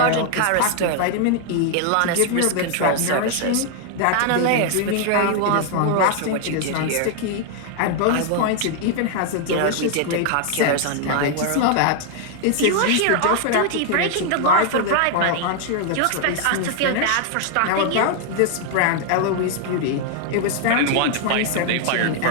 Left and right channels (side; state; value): both; different; correlation 0.00